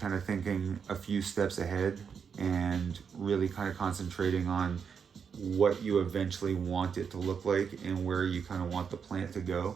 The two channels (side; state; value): left; quieter; 6.6 dB